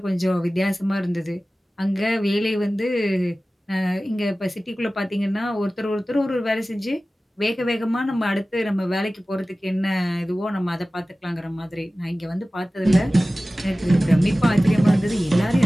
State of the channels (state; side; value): normal; both; correlation 0.96